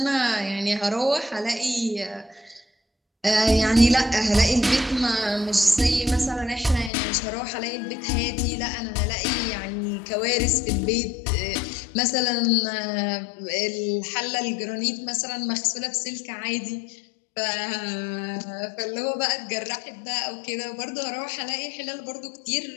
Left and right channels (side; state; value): right; drops out; at 6.9 s